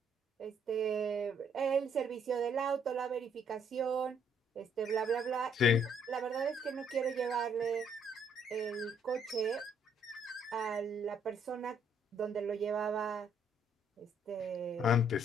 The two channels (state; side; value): normal; both; correlation 0.67